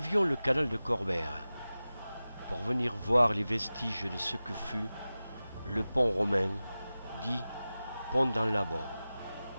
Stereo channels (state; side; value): inverted; both; correlation -0.96